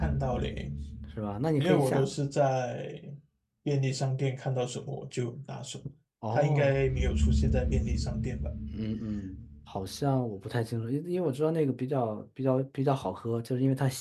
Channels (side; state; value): both; identical; correlation 1.00